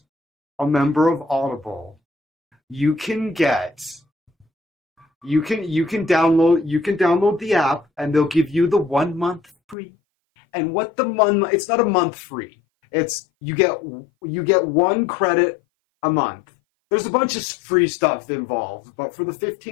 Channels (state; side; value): drops out; right; at 9.8 s